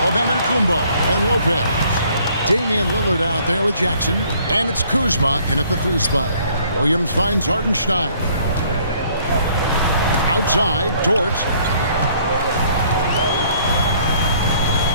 of Antetokounmpo and Lopez. Damian Lillard out there with Jackson, and it's Kuzma in at the 3 spot. Williams finds Hartenstein. Outside, Dort.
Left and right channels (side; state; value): both; inverted; correlation -0.61